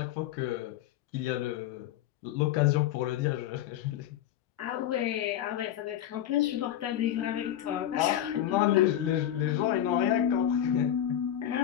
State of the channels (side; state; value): right; quieter; 11.3 dB